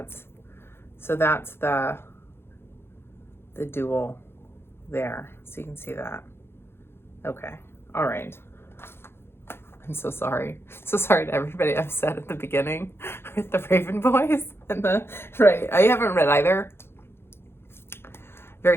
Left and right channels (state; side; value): late; right; 0.11 ms